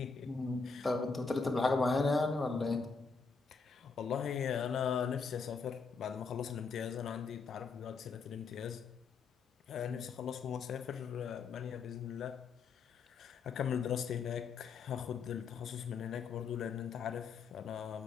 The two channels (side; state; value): right; quieter; 4.9 dB